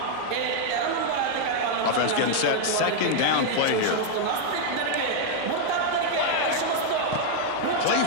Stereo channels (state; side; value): different; both; correlation 0.00